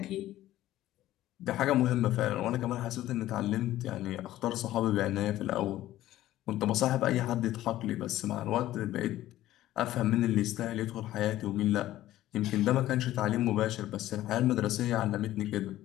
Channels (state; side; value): quieter; right; 14.5 dB